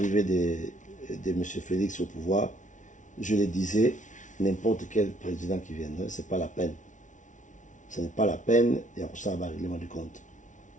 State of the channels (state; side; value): late; right; 0.37 ms